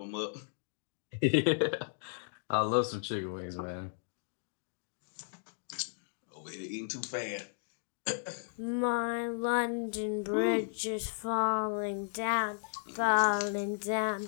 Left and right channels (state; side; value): silent; right; digital silence